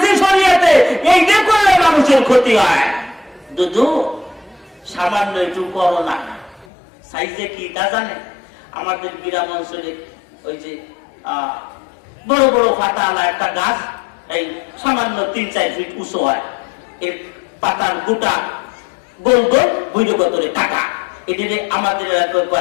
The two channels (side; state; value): right; drops out; at 6.7 s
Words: শরীয়তে, এই যে করলে মানুষের ক্ষতি হয়। দুধু সামান্য একটু করোনা সাইজে কি তা জানে? আমাদের গ্রাম অঞ্চলে ওই যে বড় বড় পাতাওয়ালা একটা গাছ, এই সামান্য 3-4 ফিট উঁচু হয়, এর পাতার গোটা গোল গোল বৈরগতরে কাটা, এটারে আমাদের